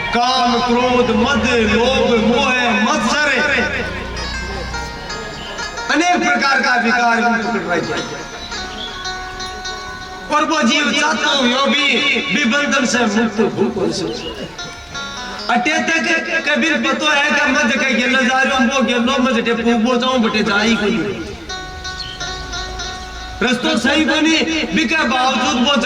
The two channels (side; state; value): both; identical; correlation 1.00